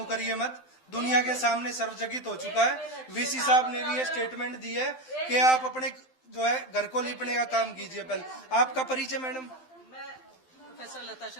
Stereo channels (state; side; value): late; right; 12 ms